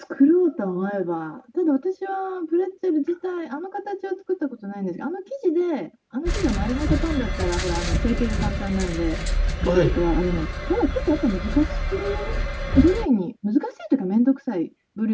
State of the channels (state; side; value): identical; both; correlation 1.00